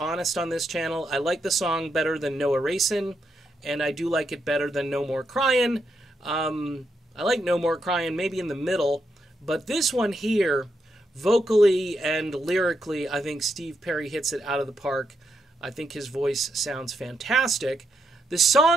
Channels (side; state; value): both; normal; correlation 0.81